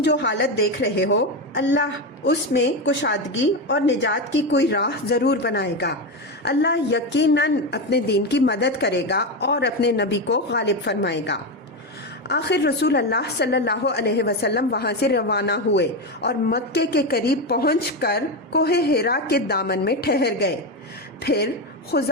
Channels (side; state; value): both; normal; correlation 0.13